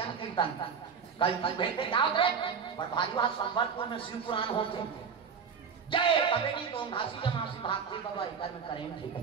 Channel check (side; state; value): left; quieter; 6.3 dB